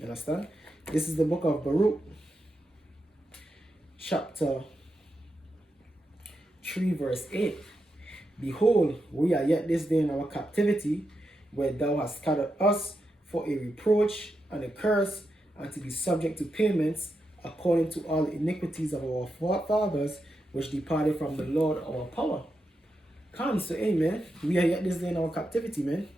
understand? This is the book of Baruch, chapter 3, verse 8. Behold, we are yet this day in our captivity, where thou hast scattered us for a reproach and a curse, and to be subject to payments, according to all the iniquities of our fathers, which departed from the Lord our power. Come, so amen. We are yet this day in our captivity, man.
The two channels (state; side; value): normal; both; correlation 0.86